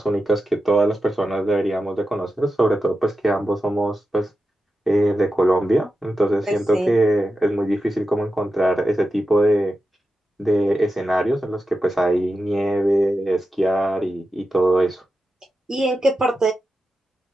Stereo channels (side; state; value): both; normal; correlation 0.90